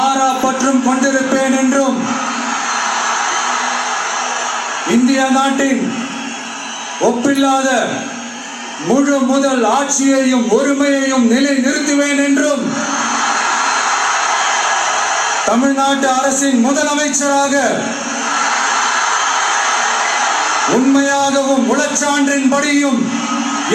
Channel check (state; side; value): identical; both; correlation 1.00